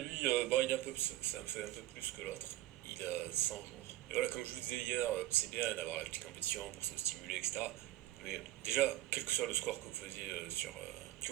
bon, il est un peu, ça me fait un peu plus que l'autre. Il a 100 jours. Et voilà, comme je vous disais hier, c'est bien d'avoir la petite compétition pour se stimuler, etc. Mais déjà, quel que soit le score que vous faisiez que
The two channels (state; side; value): quieter; left; 15.0 dB